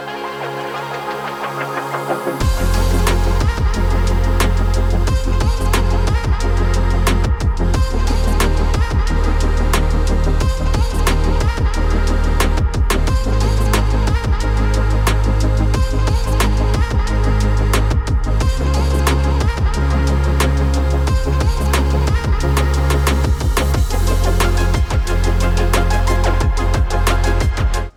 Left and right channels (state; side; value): identical; both; correlation 1.00